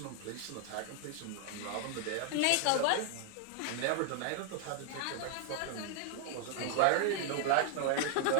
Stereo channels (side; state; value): both; different; correlation 0.00